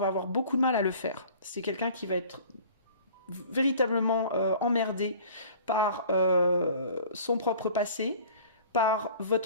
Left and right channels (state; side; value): inverted; both; correlation -0.47